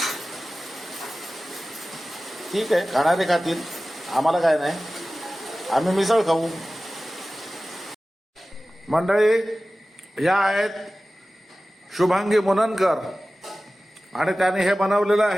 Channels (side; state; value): both; normal; correlation 0.96